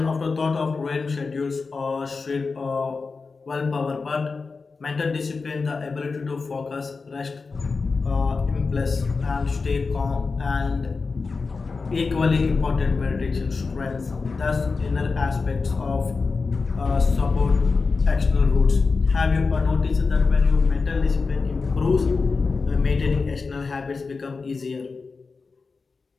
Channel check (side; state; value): right; quieter; 4.4 dB